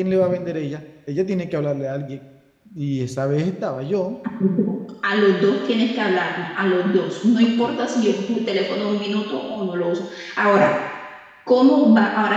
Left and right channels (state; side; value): identical; both; correlation 1.00